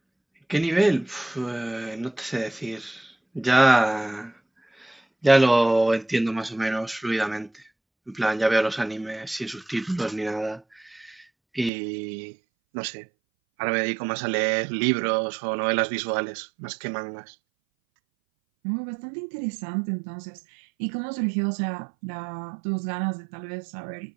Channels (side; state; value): left; drops out; at 11.7 s